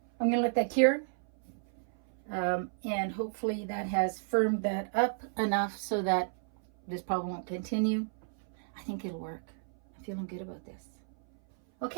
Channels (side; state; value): left; silent; 56 dB below the other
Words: I'm going to let that cure, and hopefully that has firmed that up enough so that this problem won't continue. I think it'll work. I'm feeling good about this.